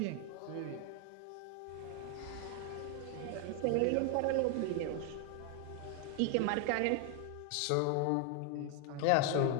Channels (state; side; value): different; both; correlation 0.01